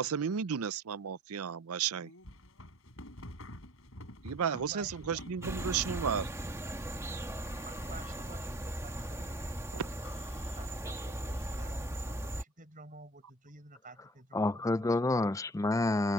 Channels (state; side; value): normal; both; correlation 0.48